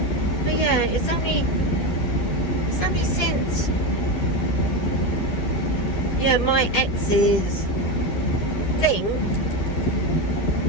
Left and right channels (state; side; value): late; right; 11 ms